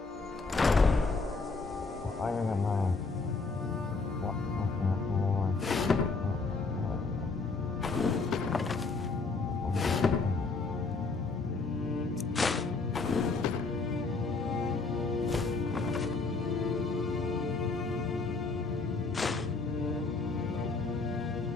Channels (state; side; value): quieter; right; 4.0 dB